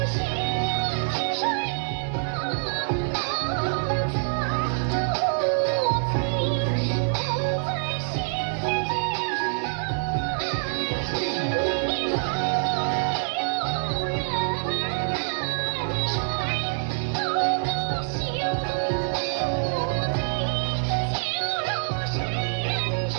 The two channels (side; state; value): left; silent; digital silence